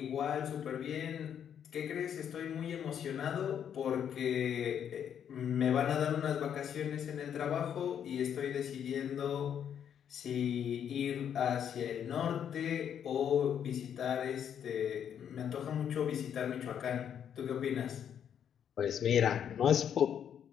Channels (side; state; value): right; quieter; 8.8 dB